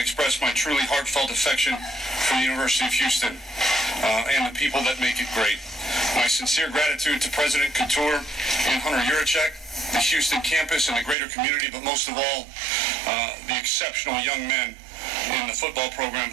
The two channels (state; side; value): drops out; left; at 11.2 s